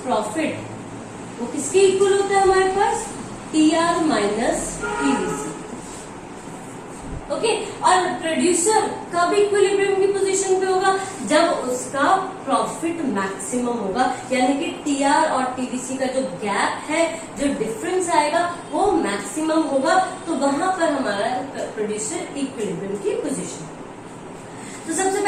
प्रॉफिट वो किसके इक्वल होता है हमारे पास, TR माइनस TVC। ओके, और प्रोड्यूसर कब इक्विलिब्रियम की पोजीशन पे होगा, जब उसका प्रॉफिट मैक्सिमम होगा, यानी कि TR और TVC का जो गैप है, जो डिफरेंस आएगा, वो मैक्सिमम होगा। तो वहां पर हमारा प्रोड्यूसर इक्विलिब्रियम की पोजीशन। तो सबसे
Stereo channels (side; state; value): both; identical; correlation 1.00